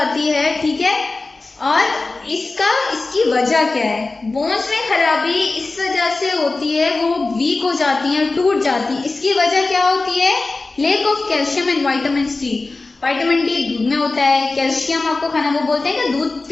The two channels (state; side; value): quieter; right; 3.5 dB